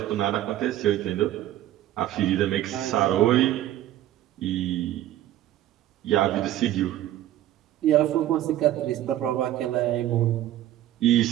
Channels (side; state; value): left; quieter; 13.3 dB